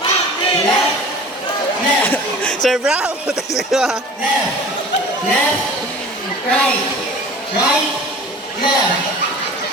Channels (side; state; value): both; normal; correlation 0.42